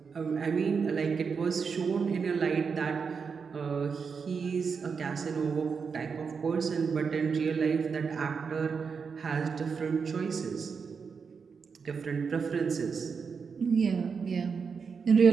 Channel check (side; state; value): left; quieter; 5.7 dB